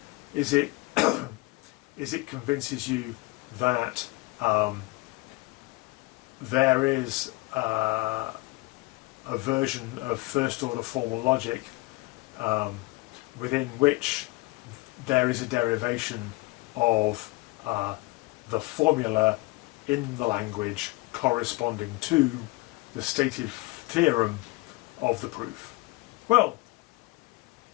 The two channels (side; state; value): right; quieter; 23.0 dB